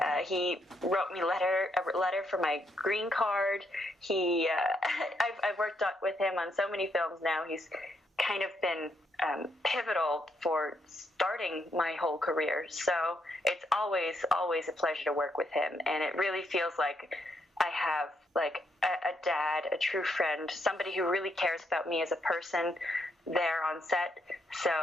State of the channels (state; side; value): normal; both; correlation 0.76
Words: He wrote me a letter for my green card. I've worked with him on so many films now. He's kind of been pivotal for starting my whole career. So it's always a pleasure to work with him. And it really feels like I have like a dad, a true friend, somebody who really cares about me as a person there on set. So